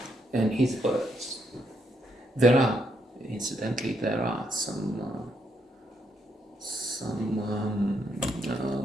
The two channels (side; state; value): both; normal; correlation 0.76